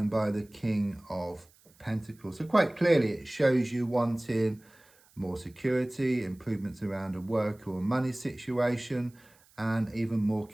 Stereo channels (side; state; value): right; noise; hiss, 30 dB below the sound